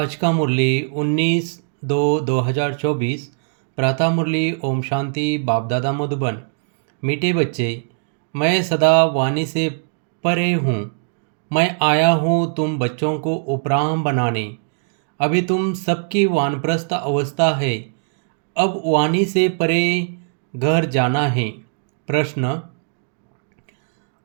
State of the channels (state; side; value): silent; left; digital silence